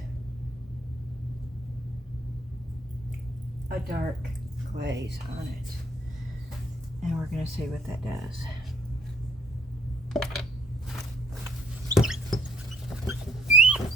a dark glaze on it, and we're going to see what that does.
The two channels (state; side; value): normal; both; correlation 0.66